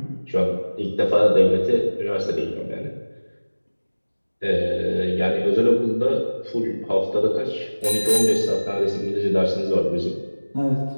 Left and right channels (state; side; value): inverted; both; correlation -1.00